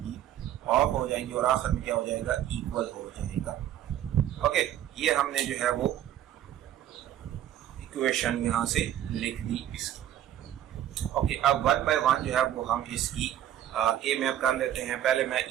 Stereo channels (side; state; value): left; quieter; 11.6 dB